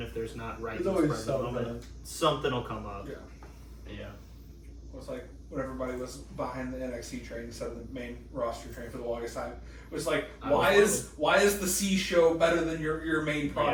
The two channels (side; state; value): both; identical; correlation 1.00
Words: if there's not right There's always present moment, something will come up. Yeah. Yeah. It was like when everybody was behind the NXT train instead of the main roster train for the longest time. It was like, why is the C show better than your main